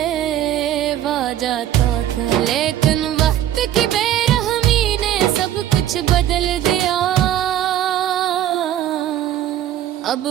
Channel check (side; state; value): left; quieter; 11.8 dB